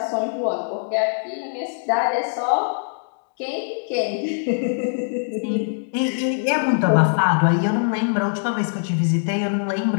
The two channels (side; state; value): right; silent; digital silence